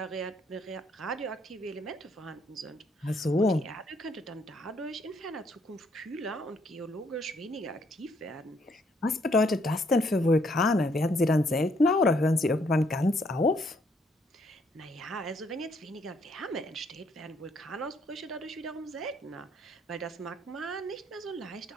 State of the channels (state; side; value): normal; both; correlation 0.69